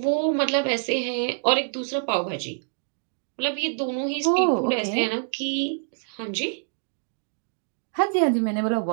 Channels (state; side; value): silent; left; digital silence